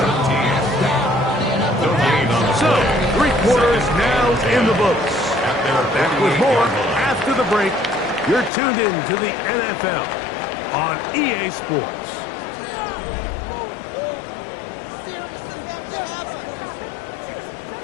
So, 3 quarters now in the books. Back with more after the break. You're tuned in to the NFL on EA Sports.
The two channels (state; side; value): drops out; right; at 8.5 s